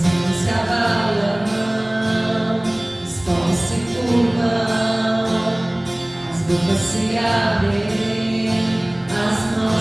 reinos se abalam, os povos se curvam, as bocas se abrem, as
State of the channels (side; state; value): right; noise; rumble, 30 dB below the sound